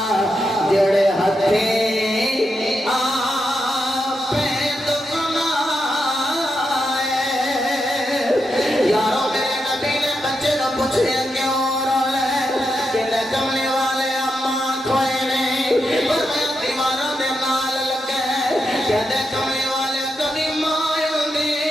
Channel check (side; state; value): both; normal; correlation 0.85